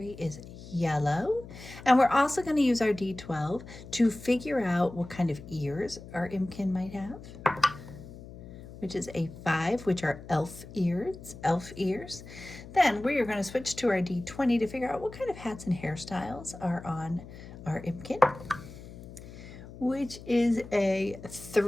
is yellow. And we're also going to use our D12 to figure out what kind of ears our Impkin might have, which is a 5, which are elf ears. Then we are going to switch to our D20 to figure out what kind of hats and hairstyles are on our Impkin, which is a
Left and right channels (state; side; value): noise; left; hum, 15 dB below the sound